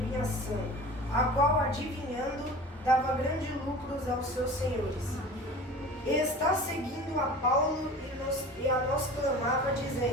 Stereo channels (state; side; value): normal; both; correlation 0.39